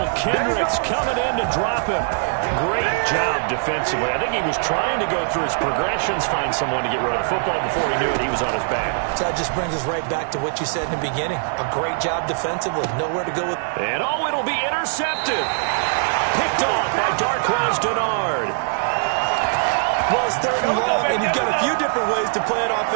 Kendricks coming in to drop him. Great job defensively. I think he was trying to go through his progressions, find someone to get rid of the football. Before he knew it, he was on his back. So that just brings us right back to what you said in the beginning. A great job defensively. Nowhere to go with. And it'll be intercepted. Picked off by Darquez Dennard. Well, it's 3rd and long, and you've got a few different ways to play it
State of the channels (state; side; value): silent; left; digital silence